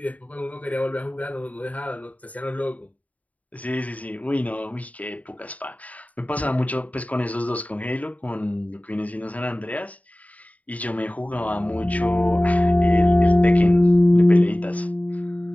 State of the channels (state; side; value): late; right; 0.071 ms